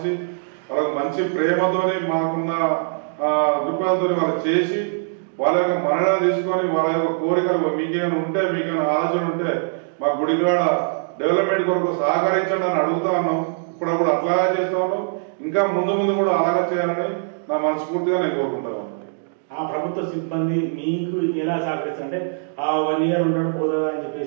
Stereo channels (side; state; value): left; silent; digital silence